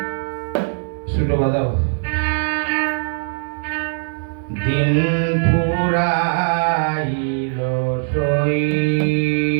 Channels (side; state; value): left; silent; 66 dB below the other